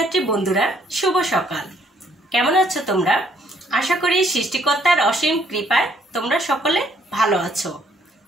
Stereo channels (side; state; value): both; normal; correlation 0.66